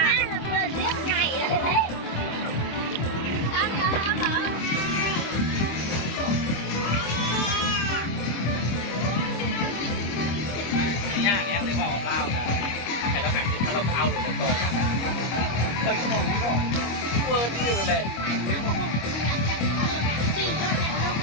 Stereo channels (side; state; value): right; late; 25 ms